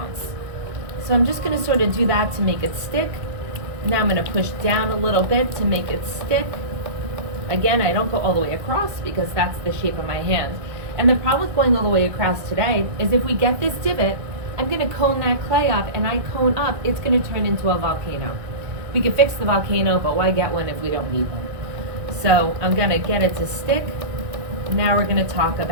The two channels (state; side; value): late; left; 1.6 ms